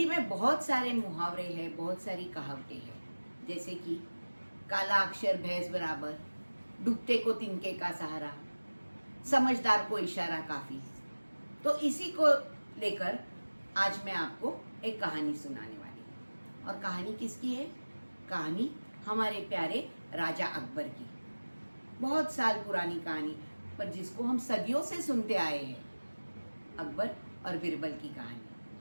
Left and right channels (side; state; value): both; inverted; correlation -1.00